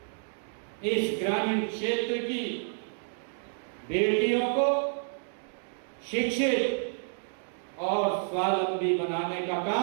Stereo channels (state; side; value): silent; left; digital silence